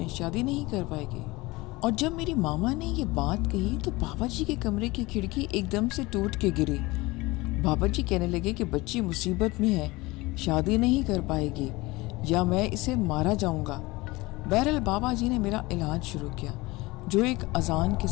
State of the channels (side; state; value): right; quieter; 21.8 dB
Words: شادی نہیں کر پائے گی۔ اور جب میری ماما نے یہ بات کہی تو بابا جی کے کمرے کی کھڑکی ایک دم سے ٹوٹ کے گری۔ بابا جی کہنے لگے کہ بچی مصیبت میں ہے، شادی نہیں کر پائے گی، یا میں اسے مارا جاؤں گا۔ بہرحال بابا جی نے میرا علاج شروع کیا، جو ایک اذان کے